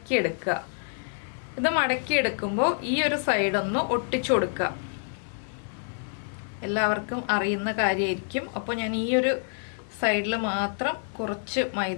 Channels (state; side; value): silent; right; digital silence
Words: ഇത് മടക്കിയെടുക്കുമ്പോൾ ഈ ഒരു സൈഡ് ഒന്ന് ഒട്ടിച്ചു കൊടുക്കുക. എല്ലാവർക്കും അറിയുന്ന കാര്യമായിരിക്കും. അപ്പോൾ ഞാൻ ഈ ഒരു സൈഡിൽ മാത്രം കുറച്ച്